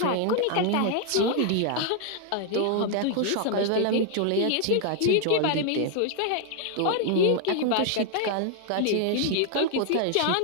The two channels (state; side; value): different; both; correlation 0.00